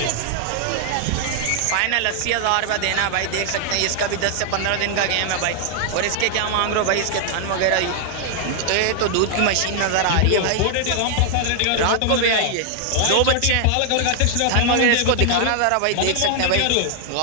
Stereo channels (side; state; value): both; different; correlation 0.00